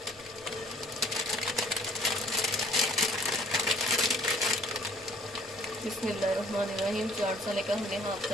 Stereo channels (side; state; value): left; noise; rumble, 27 dB below the sound